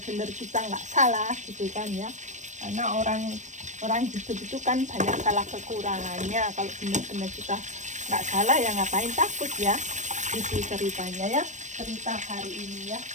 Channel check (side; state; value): left; late; 0.35 ms